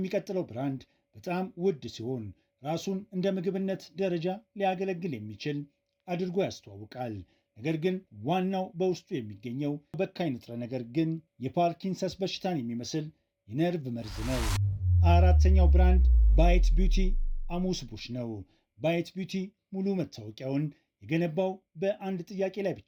ብራንድ በጣም ውድ ሲሆን ራሱን እንደ ምግብነት ደረጃ ሊያገለግል የሚችል አድርጎ ያስተዋውቃል። ነገር ግን ዋናው በውስጡ የሚገኘው በካይ ንጥረ ነገር ግን የፓርኪንሰንስ በሽታን የሚመስል የነርቭ መርዝ ነው። 4ኛው ብራንድ ባይት ቢዩቲ አሙስ ቡሽ ነው። ባይት ቢዩቲ ሙሉ መታወቂያውን የገነባው በአንድ ጥያቄ ላይ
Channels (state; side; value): identical; both; correlation 1.00